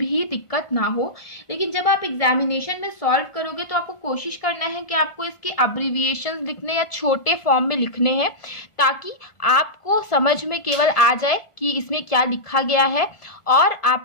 दिक्कत ना हो। लेकिन जब आप एग्जामिनेशन में सॉल्व करोगे तो आपको कोशिश करना है कि आपको इसके अब्रिविएशंस लिखने या छोटे फॉर्म में लिखने हैं, ताकि आपको समझ में केवल आ जाए कि इसमें क्या लिखा गया है और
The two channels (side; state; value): right; late; 1.5 ms